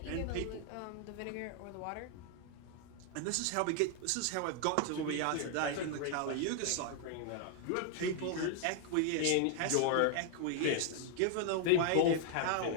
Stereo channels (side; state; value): both; different; correlation 0.00